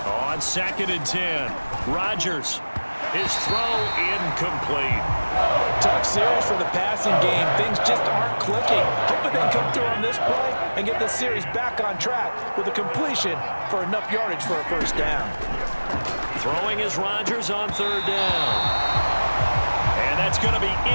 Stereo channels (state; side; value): inverted; both; correlation -1.00